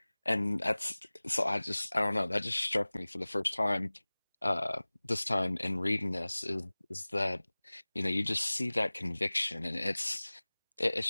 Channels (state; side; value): inverted; both; correlation -1.00